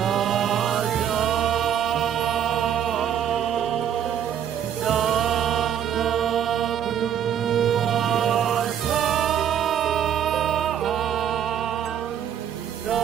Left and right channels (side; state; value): left; quieter; 9.4 dB